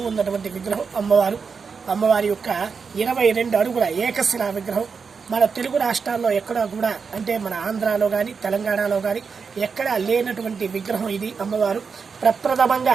ఉన్నటువంటి విగ్రహం అమ్మవారి యొక్క 22 అడుగుల ఏకశిలా విగ్రహం. మన తెలుగు రాష్ట్రాల్లో ఎక్కడా కూడా, అంటే మన ఆంధ్రాలో కానీ తెలంగాణలో కానీ ఎక్కడా లేనటువంటి విగ్రహం ఇది. అమ్మవారు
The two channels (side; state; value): left; quieter; 5.5 dB